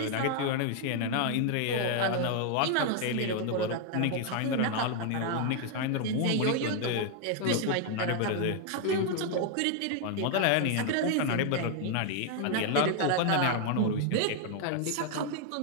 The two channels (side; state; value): both; different; correlation 0.00